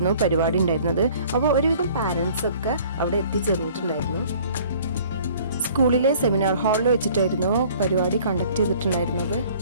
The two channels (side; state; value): both; inverted; correlation -0.53